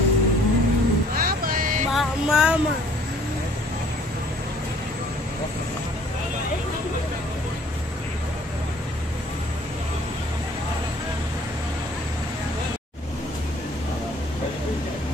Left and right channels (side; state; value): both; normal; correlation 0.56